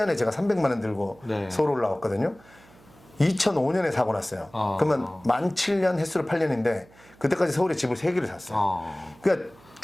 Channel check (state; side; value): noise; right; hum, 26 dB below the sound